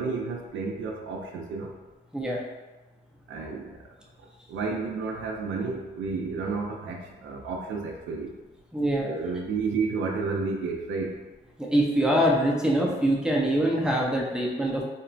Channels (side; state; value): both; normal; correlation 0.66